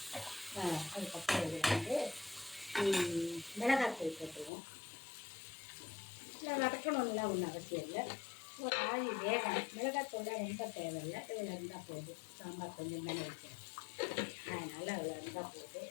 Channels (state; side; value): drops out; right; at 4.5 s